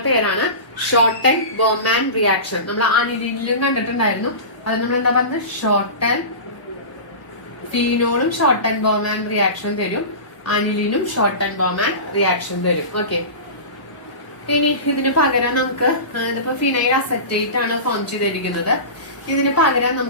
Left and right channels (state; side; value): late; right; 1.0 ms